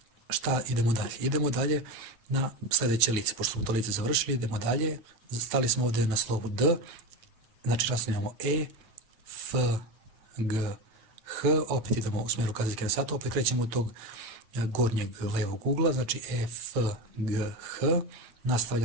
Šta idemo dalje? Idemo dalje na sljedeće lice, pošto smo to lice završili, idemo dalje, stali smo ovdje na slovu D, znači nastavljamo E, F, G, H, opet idemo u smjeru kazaljke na satu, opet krećemo od tog gornjeg levog ugla, znači E, F, G, H,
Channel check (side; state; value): left; late; 9.0 ms